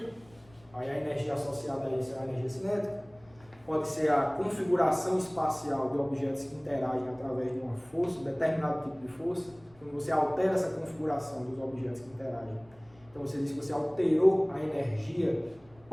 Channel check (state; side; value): noise; left; rumble, 28 dB below the sound